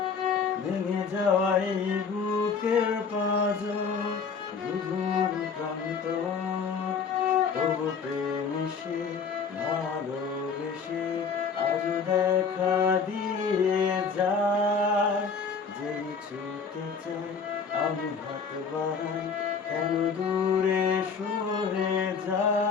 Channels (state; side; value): quieter; right; 5.6 dB